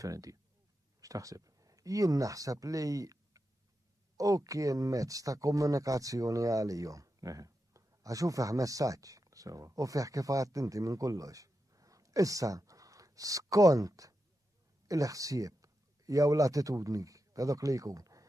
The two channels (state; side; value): normal; both; correlation 0.89